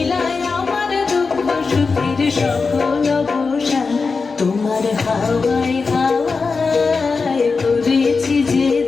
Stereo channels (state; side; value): quieter; right; 4.5 dB